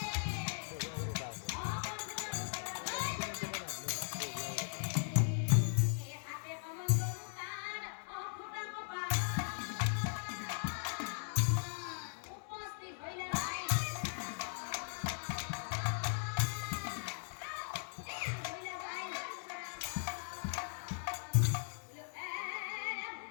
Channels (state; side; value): silent; right; digital silence